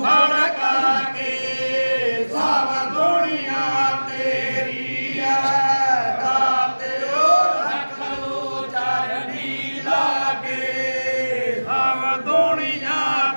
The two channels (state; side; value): inverted; both; correlation -1.00